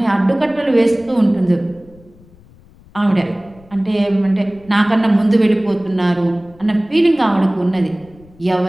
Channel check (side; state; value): left; noise; rumble, 26 dB below the sound